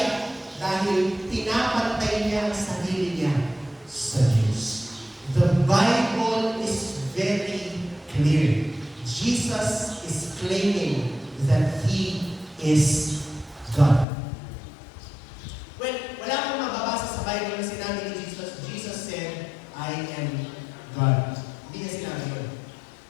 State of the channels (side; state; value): right; drops out; at 14.1 s